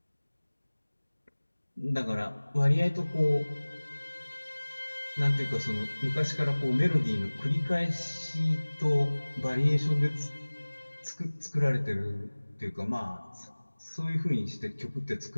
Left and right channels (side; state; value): both; inverted; correlation -1.00